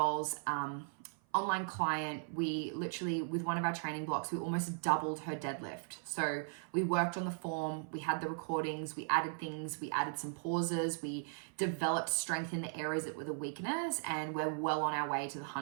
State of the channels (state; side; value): silent; left; 53 dB below the other